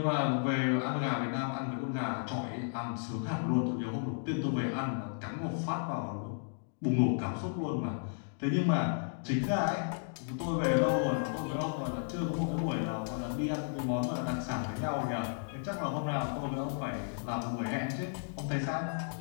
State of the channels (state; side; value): silent; right; digital silence